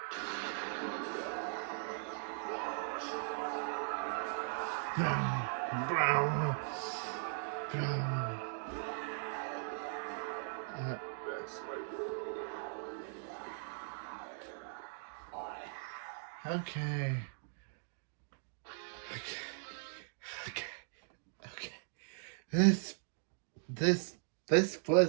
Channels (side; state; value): left; silent; digital silence